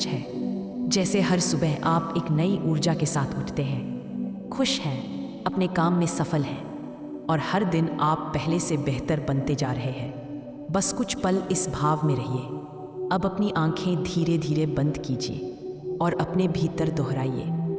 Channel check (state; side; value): identical; both; correlation 1.00